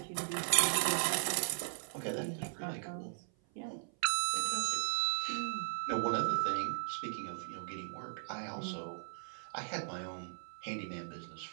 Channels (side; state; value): left; silent; 53 dB below the other